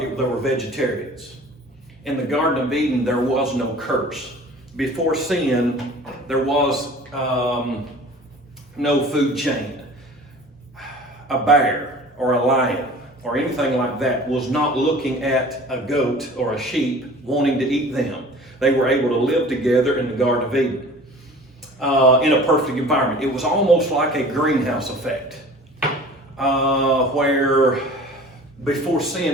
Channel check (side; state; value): both; normal; correlation 0.44